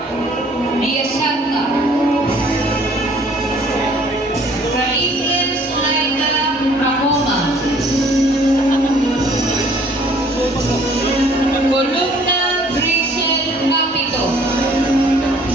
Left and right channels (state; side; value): normal; both; correlation 0.57